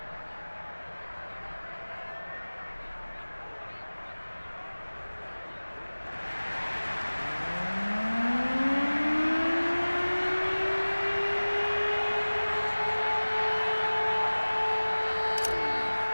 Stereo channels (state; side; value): inverted; both; correlation -1.00